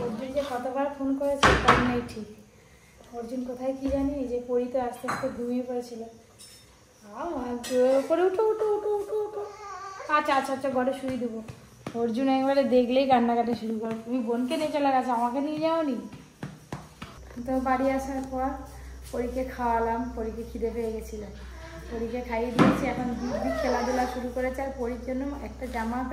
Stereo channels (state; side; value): identical; both; correlation 1.00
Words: অর্জুন যে কতবার ফোন করেছে তার নেই ঠিক। অর্জুন কোথায় কি জানি, যে পড়িতে আস্তে আস্তে ঘুমিয়ে পড়েছিল। পরে উঠো উঠো উঠো উঠো উঠো। আচ্ছা আচ্ছা আচ্ছা, ঘরে শুয়ে দেবো। অর্জুন একবারে দেখলেই কান্নাকাটি শুরু করে। তুমি বোনকে নিয়ে চলে গেছো, আমাকে নিয়ে যাওনি। তো বাড়ি আসার পর পরীকে খাওয়ালাম, পরীকে খিদে পেয়ে গেছিল, পরীকে খাইয়ে দিয়েছি। এখন দিব্যি খেলাধুলা শুরু করেছে। আর পরীর জন্য একটা জামা